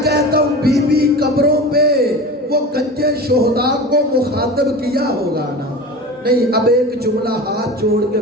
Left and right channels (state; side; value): normal; both; correlation 0.32